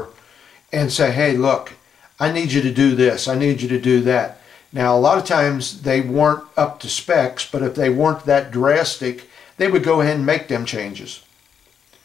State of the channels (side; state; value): right; quieter; 7.5 dB